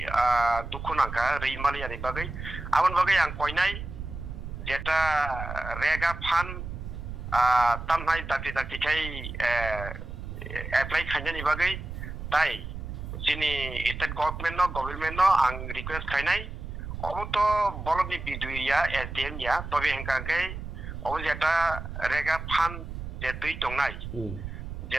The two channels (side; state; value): right; noise; rumble, 8 dB below the sound